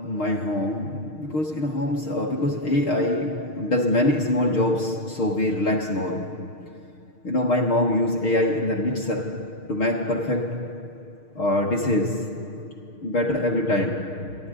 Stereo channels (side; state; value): right; late; 6.5 ms